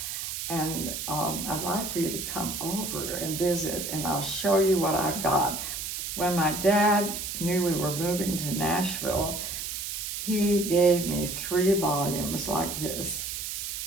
and I'd like for you to come over and visit, and I'll show you what I've got. When my dad knew we were moving to Nashville, he gave me 3 volumes like this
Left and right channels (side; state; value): right; noise; hiss, 5 dB below the sound